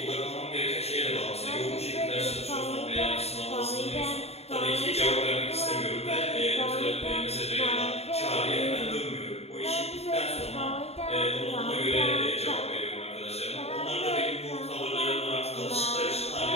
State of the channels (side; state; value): right; late; 0.30 ms